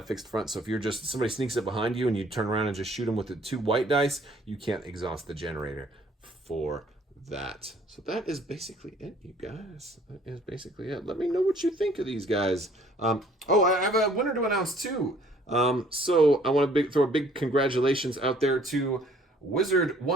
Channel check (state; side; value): normal; both; correlation 0.58